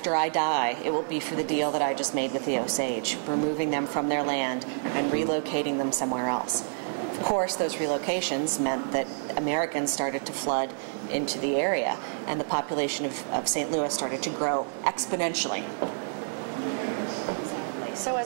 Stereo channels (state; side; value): silent; left; digital silence